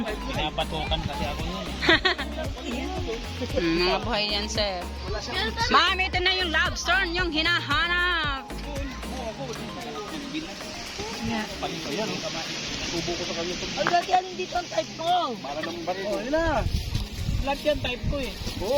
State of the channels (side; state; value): both; identical; correlation 1.00